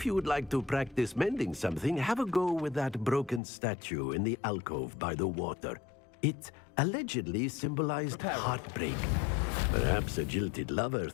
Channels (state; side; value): drops out; right; at 3.4 s